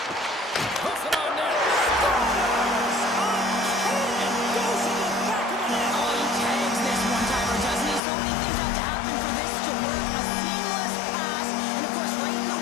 Puts it on net. Scores! And goes in the back of the net. Oh, he tags this one-timer, doesn't he? So many things have to happen for this to work. A seamless pass, and of course right in the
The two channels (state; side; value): drops out; right; at 8.0 s